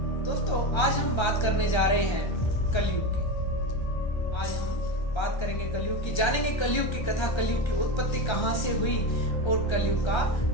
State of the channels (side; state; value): right; late; 1.3 ms